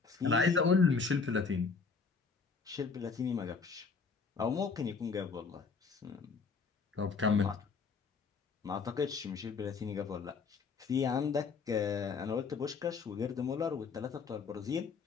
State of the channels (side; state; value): right; quieter; 5.1 dB